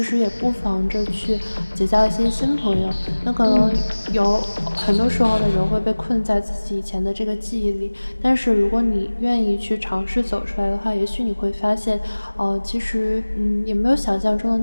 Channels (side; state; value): both; inverted; correlation -1.00